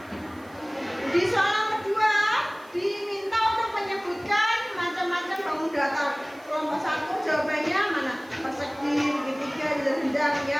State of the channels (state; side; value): noise; right; hiss, 28 dB below the sound